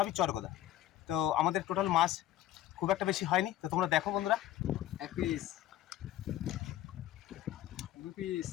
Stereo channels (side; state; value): right; quieter; 13.4 dB